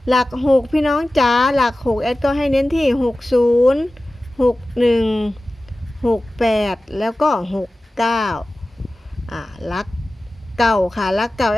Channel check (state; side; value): normal; both; correlation 0.96